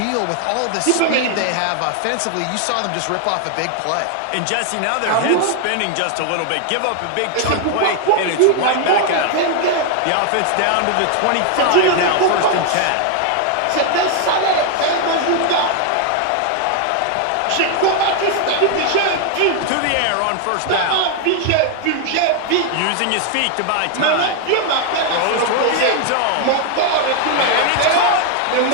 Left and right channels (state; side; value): different; both; correlation 0.00